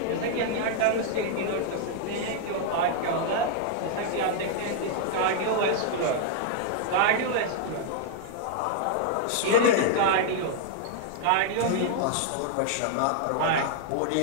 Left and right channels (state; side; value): different; both; correlation -0.01